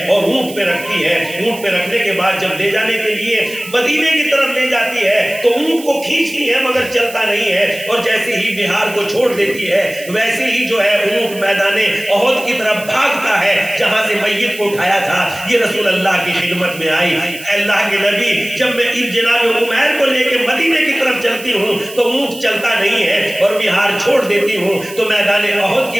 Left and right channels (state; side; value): noise; right; hiss, 15 dB below the sound